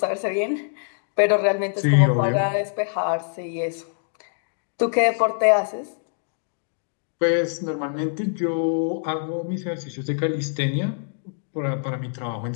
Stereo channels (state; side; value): silent; right; digital silence